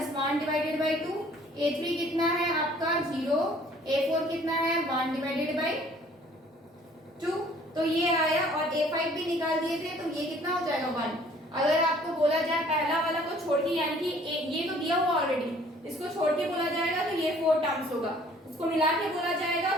डिवाइडेड बाई 2, a3 कितना है आपका 0, a4 कितना है 1 डिवाइडेड बाई 2, तो ये आया और a5 भी निकाल दिए थे तो ये कितना हो जाएगा 1। अगर आपको बोला जाए पहला वाला को छोड़ के, यानी कि ये तो दिया हुआ ऑलरेडी, इसको छोड़ के बोला जाएगा तो ये 4 टर्म्स होगा, इसको मिला के बोला जाएगा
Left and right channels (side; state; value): both; normal; correlation 0.56